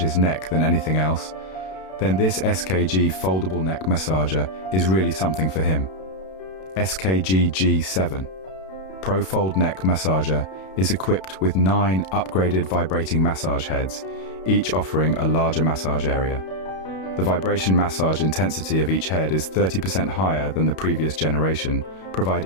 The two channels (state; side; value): late; right; 32 ms